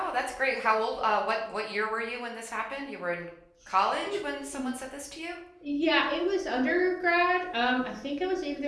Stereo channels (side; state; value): both; identical; correlation 1.00